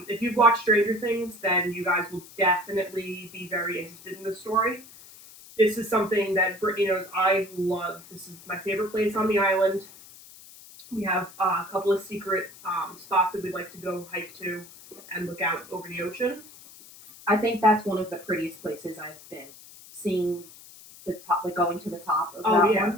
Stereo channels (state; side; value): noise; left; hiss, 20 dB below the sound